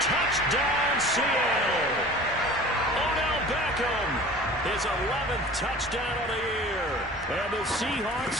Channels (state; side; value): normal; both; correlation 0.42